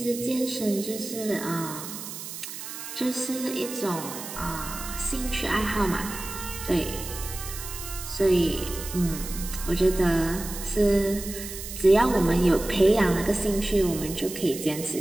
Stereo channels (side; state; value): right; noise; hiss, 10 dB below the sound